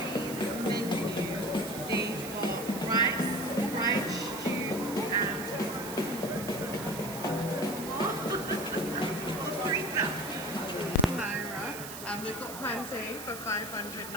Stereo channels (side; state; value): right; noise; hiss, 10 dB below the sound